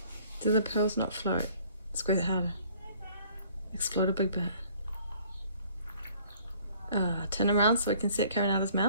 Do the pearls not float? Squeeze it harder. Explode a big bit. Turn around so we can see it coming out of his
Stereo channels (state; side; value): inverted; both; correlation -0.56